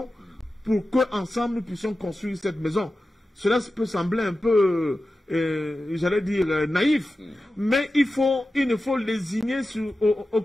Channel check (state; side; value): normal; both; correlation 0.93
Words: pour qu'ensemble nous puissions construire cette maison. Cela peut sembler un peu, j'allais dire, naïf, mais il ne faut lésigner sur